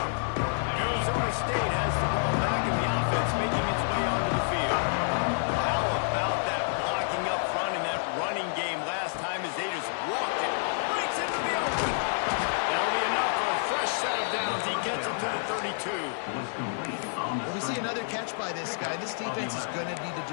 Arizona State has the ball back, and the offense making its way onto the field. How about that blocking up front in that running game last time as they just walked it? Breaks into the open. That'll be enough for a fresh set of downs. He gets it to the 32. Well, we see another catch by this guy. This defense is going to need to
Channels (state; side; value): silent; right; 59 dB below the other